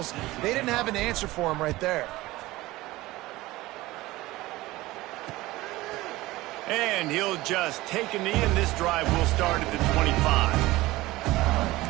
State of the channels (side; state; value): left; quieter; 18.7 dB